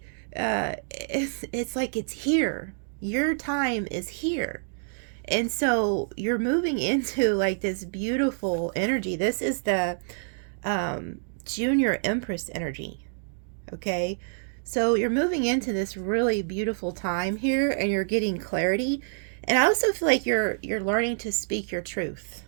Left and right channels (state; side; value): silent; left; digital silence